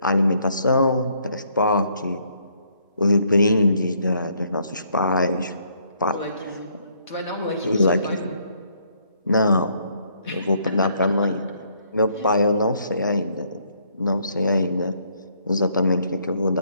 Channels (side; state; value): both; inverted; correlation -0.68